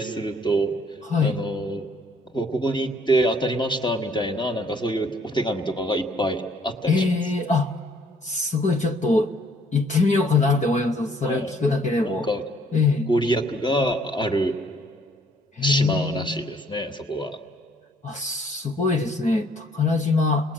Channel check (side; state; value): both; normal; correlation 0.62